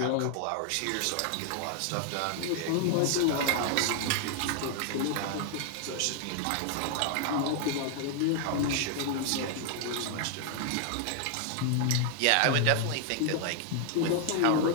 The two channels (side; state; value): both; different; correlation 0.00